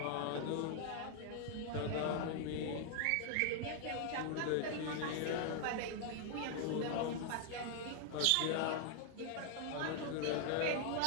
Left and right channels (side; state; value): both; different; correlation 0.00